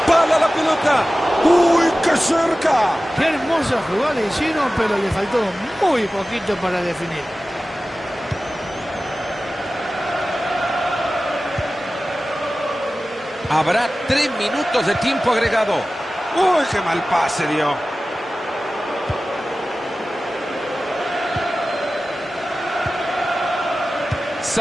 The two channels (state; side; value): normal; both; correlation 0.96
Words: la pelota. ¡Uy, qué cerca! Qué hermosa jugada hicieron, pero le faltó muy poquito para definir. Habrá 3 minutos de tiempo agregado. ¡Uy, qué mal pase dio!